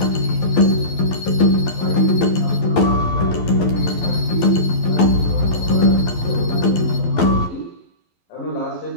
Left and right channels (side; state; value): right; late; 12 ms